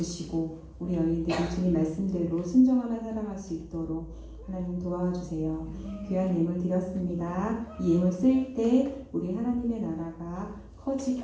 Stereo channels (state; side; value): identical; both; correlation 1.00